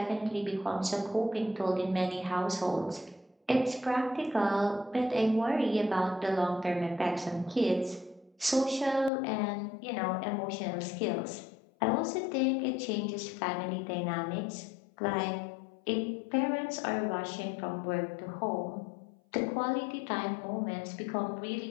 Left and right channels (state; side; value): drops out; right; at 9.1 s